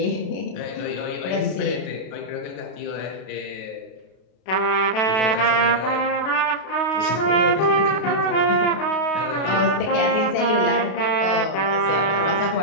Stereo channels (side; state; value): right; late; 32 ms